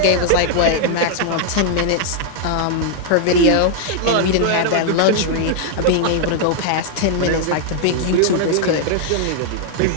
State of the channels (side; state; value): both; different; correlation 0.00